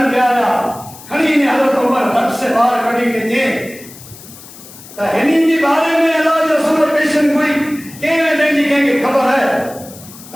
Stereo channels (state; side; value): noise; left; hiss, 18 dB below the sound